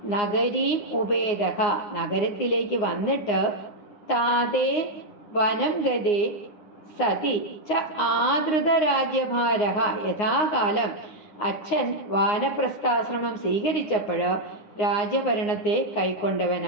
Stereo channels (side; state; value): right; late; 9.7 ms